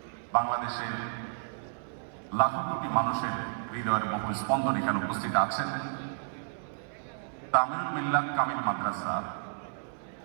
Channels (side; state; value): left; silent; 57 dB below the other